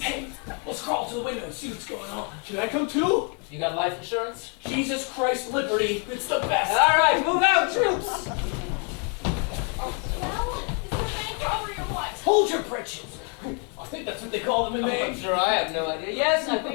Hey, let's crawl to the window and see what's going on. Should I come too? You got life insurance? Jesus Christ, liberty. It's the best. All right, move out, troops! Well, is it a bank robbery or what? Hold your britches. I think that's what they call them in I'm Maine. sure I have no idea. Yes, I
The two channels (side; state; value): right; quieter; 38.1 dB